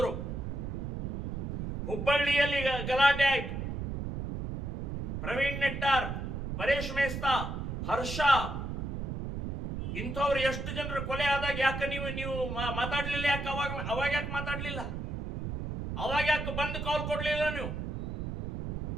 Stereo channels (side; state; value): right; noise; rumble, 4 dB below the sound